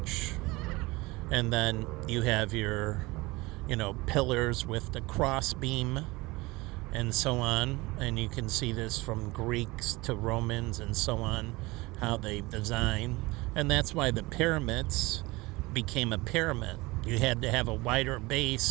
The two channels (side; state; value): left; quieter; 22.3 dB